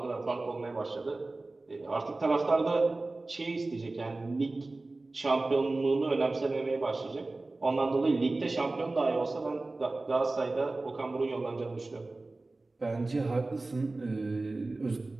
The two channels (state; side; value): quieter; left; 3.2 dB